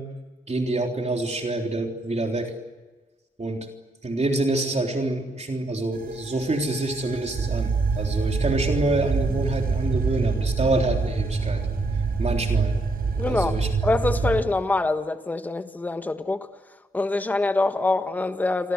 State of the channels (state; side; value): normal; both; correlation 0.76